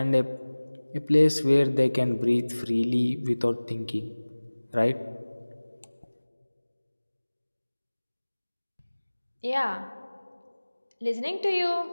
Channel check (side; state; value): both; inverted; correlation -1.00